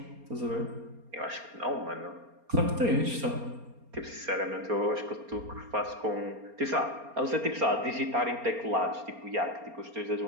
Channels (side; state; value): left; late; 4.3 ms